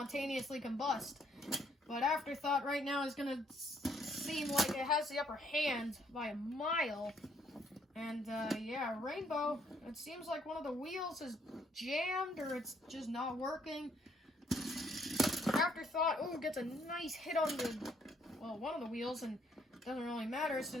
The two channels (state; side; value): normal; both; correlation 0.68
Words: combust. But Afterthought right now is going to seem like it has the upper hand by a mile. And, yeah, Rainbow, it seems like one of the wheels is jammed or it's just not working. Afterthought, ooh, gets a nice hit on one of the wheels, and it doesn't really matter